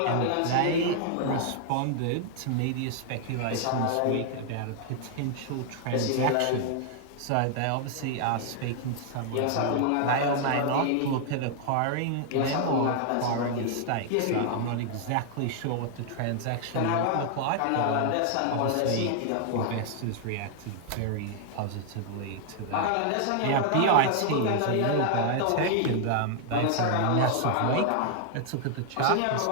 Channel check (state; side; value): different; both; correlation 0.00